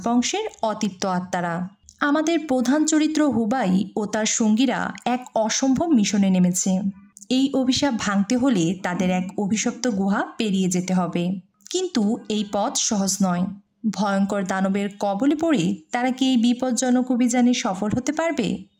অতৃপ্ত আত্মারা। আমাদের প্রধান চরিত্র হুবাই ও তার সঙ্গীরা এক অসম্ভব মিশনে নেমেছে। এই অভিশাপ ভাঙতে হলে তাদের এক অভিশপ্ত গুহা পেরিয়ে যেতে হবে। কিন্তু এই পথ সহজ নয়। ভয়ঙ্কর দানবের কবলে পড়ে তারা কি এই বিপজ্জনক অভিযানে সফল হতে পারবে,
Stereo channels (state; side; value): identical; both; correlation 1.00